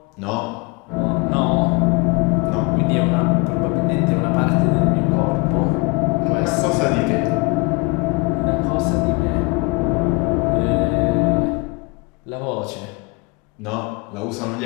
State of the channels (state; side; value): quieter; right; 27.2 dB